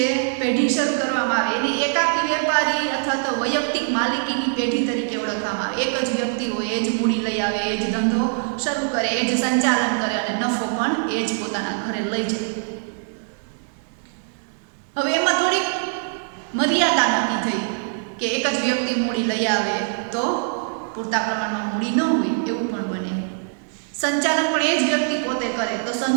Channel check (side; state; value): left; silent; digital silence